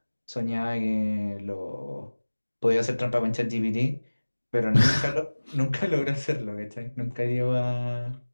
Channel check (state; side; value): inverted; both; correlation -1.00